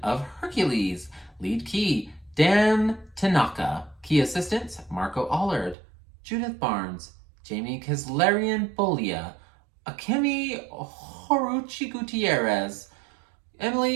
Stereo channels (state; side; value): drops out; left; at 5.8 s